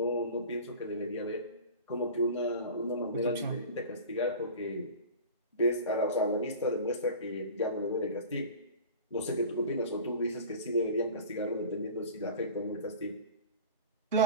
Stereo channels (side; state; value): both; inverted; correlation -0.38